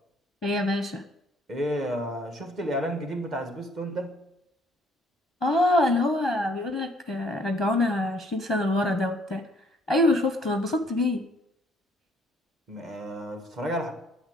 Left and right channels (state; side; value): normal; both; correlation 0.63